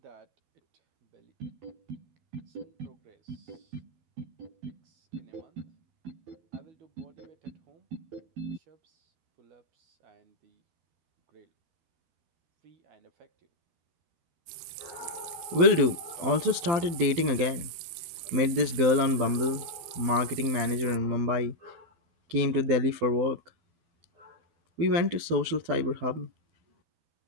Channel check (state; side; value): late; left; 12 ms